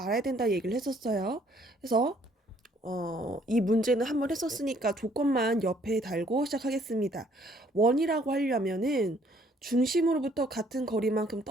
된다 얘기를 했었어요. 그래서 이 문제는 한번 했었으니까 조건만 옆에 달고 시작하겠습니다. 원이라고 하려면은 중심으로부터 같은 거리만큼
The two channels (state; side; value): normal; both; correlation 0.63